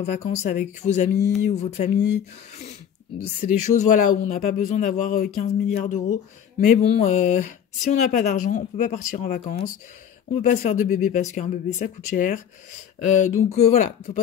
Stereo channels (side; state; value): right; quieter; 8.7 dB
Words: vacances avec vos amis ou votre famille. C'est des choses voilà, où on n'a pas besoin d'avoir 15 milliards d'euros. Mais bon, si on n'a pas d'argent, on peut pas partir en vacances. On peut pas se faire de bébé parce qu'un bébé ça coûte cher. Donc voilà, faut